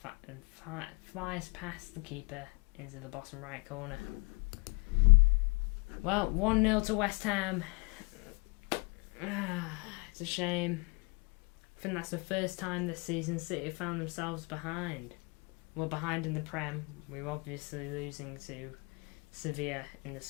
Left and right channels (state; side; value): quieter; right; 30.0 dB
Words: flies past the keeper into the bottom right corner. Well, 1-0 to West Ham. It's a shame. I think that's the first time this season City have found themselves behind. Well, behind in the Prem. We were obviously losing to Sevilla in the